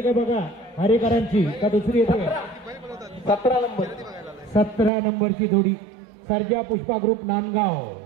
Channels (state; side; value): drops out; left; at 4.9 s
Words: का बघा हरेकरांची का दुसरी येते. 17 नंबर. 17 नंबरची जोडी सर्जा पुष्पा ग्रुप नांदगाव.